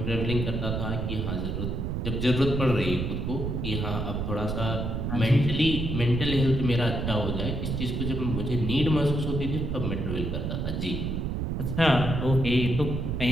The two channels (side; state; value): right; noise; rumble, 2 dB below the sound